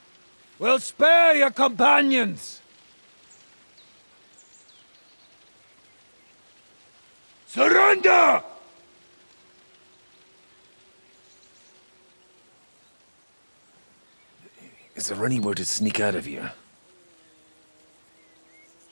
we'll spare your companions. Surrender! Is there anywhere to sneak out of here?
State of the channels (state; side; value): inverted; both; correlation -1.00